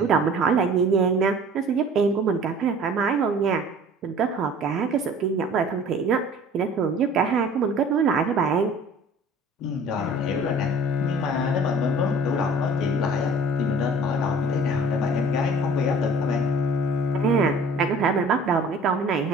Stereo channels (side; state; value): both; normal; correlation 0.48